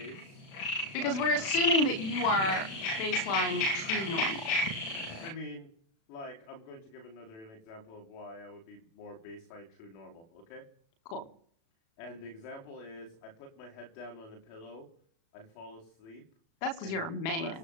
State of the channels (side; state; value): right; late; 36 ms